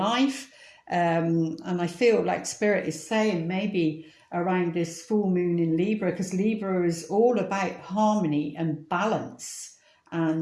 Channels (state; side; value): identical; both; correlation 1.00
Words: And I feel like Spirit is saying maybe around this full moon in Libra, because Libra is all about harmony and balance,